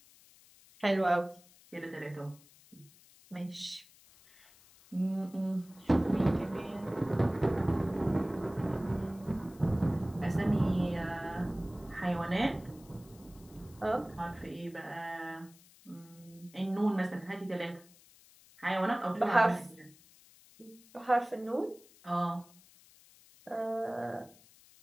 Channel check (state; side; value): noise; left; hiss, 25 dB below the sound